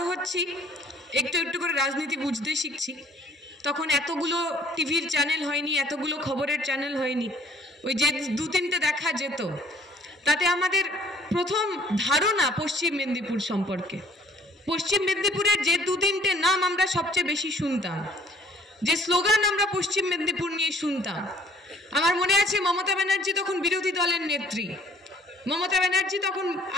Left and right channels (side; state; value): both; normal; correlation 0.57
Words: হচ্ছি, একটু একটু করে রাজনীতি বুঝতে শিখছি, তখন এতগুলো টিভির চ্যানেল হয়নি, এতগুলো খবরের চ্যানেল হয়নি। ওই যে দু তিনটে দেখা যেত, তাতে আমাদের প্রথম ধারণা পশ্চিম মেদিনীপুর সম্পর্কে, পশ্চিম মেদিনীপুরের যে দু তিনটে নাম আমরা সবচেয়ে বেশি শুনতাম, যে স্লোগান আমরা পশ্চিম মেদিনীপুর নিয়ে শুনতাম। আমার মনে আছে মমতা ব্যানার্জি তখন বিরোধী দলের নেত্রী, মমতা ব্যানার্জি তখন